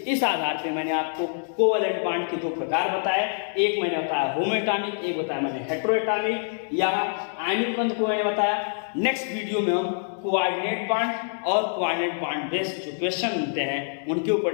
इस आधार पे मैंने आपको कोवेलेंट बॉन्ड के दो प्रकार बताए, एक मैंने बताया होमोएटॉमिक, एक बताया मैंने हेटेरोएटॉमिक या आयनिक बंध को मैंने बताया। नेक्स्ट वीडियो में हम कोऑर्डिनेट बॉन्ड और कोऑर्डिनेट बॉन्ड बेस्ड जो क्वेश्चन मिलते हैं उनके ऊपर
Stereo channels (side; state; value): right; silent; digital silence